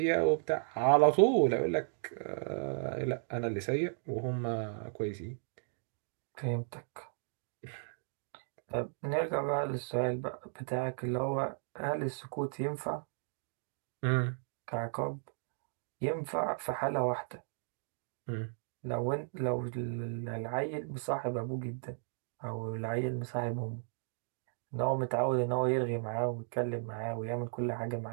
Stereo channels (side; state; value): left; silent; digital silence